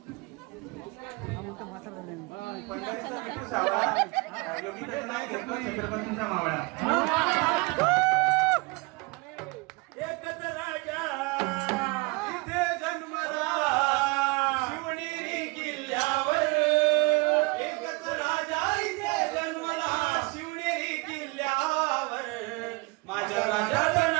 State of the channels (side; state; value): left; quieter; 26.7 dB